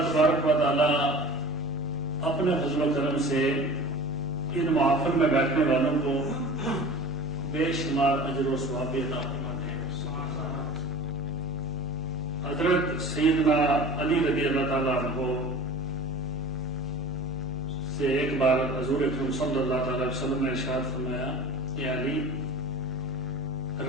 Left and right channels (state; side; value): noise; right; hum, 15 dB below the sound